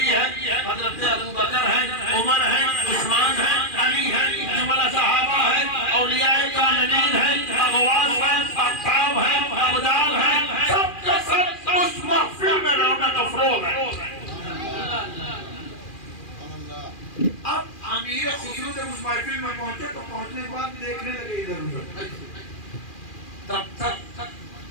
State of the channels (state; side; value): late; right; 2.4 ms